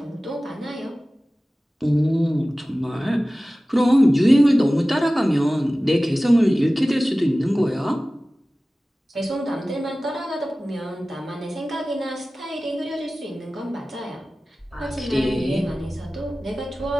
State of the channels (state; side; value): normal; both; correlation 0.97